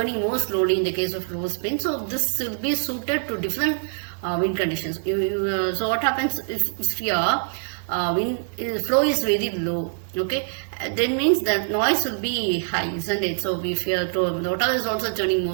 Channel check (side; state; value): left; silent; 62 dB below the other